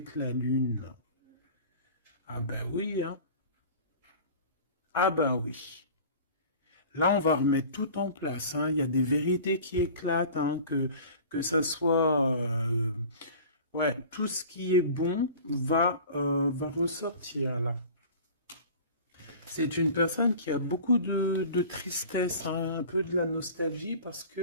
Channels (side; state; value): both; inverted; correlation -0.41